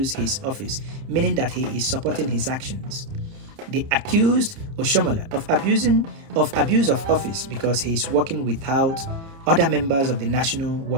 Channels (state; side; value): late; left; 30 ms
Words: his office, meaning that he is supporting his actions. They accused Oshiomhole of abuse of office because he is working without other members of the National